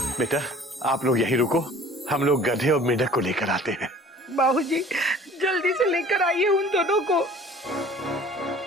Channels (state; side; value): normal; both; correlation 0.48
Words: बेटा आप लोग यहीं रुको, हम लोग गधे और मेढक को लेकर आते हैं। बाबूजी जल्दी से लेकर आइए उन दोनों को।